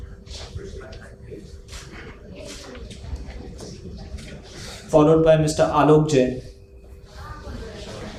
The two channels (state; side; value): identical; both; correlation 1.00